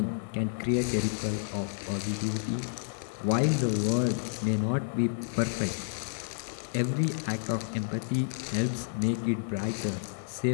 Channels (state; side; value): silent; right; digital silence